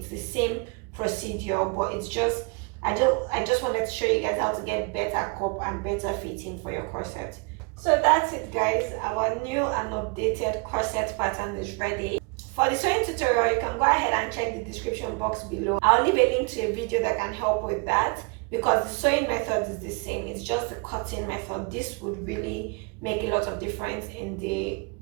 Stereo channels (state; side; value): quieter; left; 32.4 dB